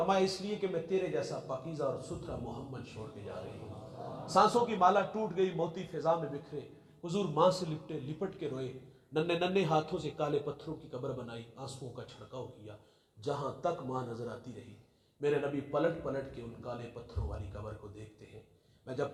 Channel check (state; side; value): identical; both; correlation 1.00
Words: اس لیے کہ میں تیرے جیسا پاکیزہ اور ستھرا محمد چھوڑ کے جا رہی ہوں. سانسوں کی مالا ٹوٹ گئی، موتی فضا میں بکھرے. حضور ماں سے لپٹ کے روئے. ننھے ننھے ہاتھوں سے کالے پتھروں کی قبر بنائی، آنسوؤں کا چھڑکاؤ کیا. جہاں تک ماں نظر آتی رہی میرے نبی پلٹ پلٹ کے ان کالے پتھروں والی قبر کو دیکھتے ہیں. میں جب